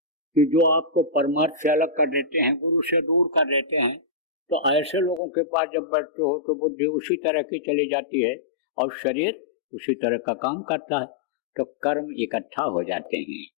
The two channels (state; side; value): drops out; right; at 5.2 s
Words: कि जो आपको परमार्थ से अलग कर देते हैं, गुरु से दूर कर देते हैं। तो ऐसे लोगों के पास जब बैठते हो तो बुद्धि उसी तरह की चली जाती है और शरीर उसी तरह का काम करता है, तो कर्म इकट्ठा हो जाते हैं।